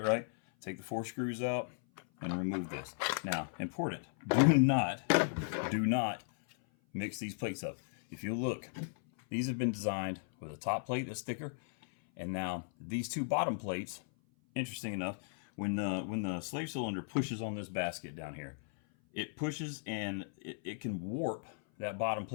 right? Take the 4 screws out and remove this. Now, important, do not mix these plates up. If you look, these have been designed with a top plate that's thicker, and now these 2 bottom plates, interesting enough, when the slave cylinder pushes on this basket down here, it pushes and it can warp that bottom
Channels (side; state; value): right; silent; 54 dB below the other